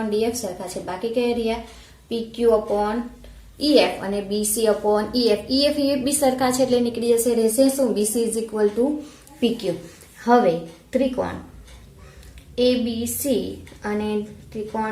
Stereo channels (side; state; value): both; identical; correlation 1.00